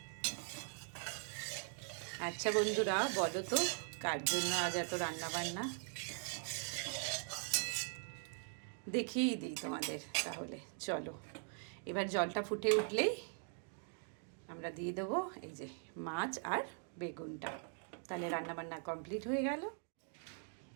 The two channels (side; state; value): left; silent; 50 dB below the other